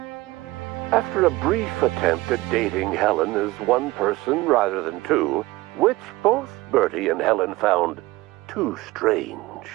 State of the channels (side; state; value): left; quieter; 19.7 dB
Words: After a brief attempt at dating Helen as one person rather than two, which both Bertie and Helen found too strange,